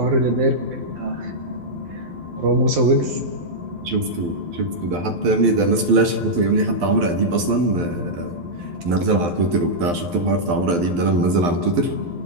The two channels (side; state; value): left; late; 12 ms